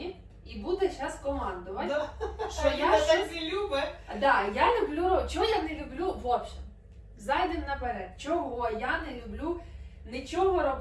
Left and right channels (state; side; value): identical; both; correlation 1.00